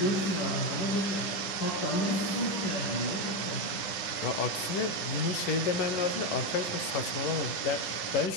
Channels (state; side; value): late; right; 10 ms